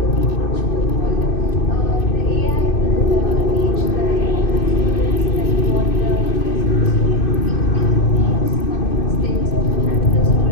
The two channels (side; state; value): right; late; 2.6 ms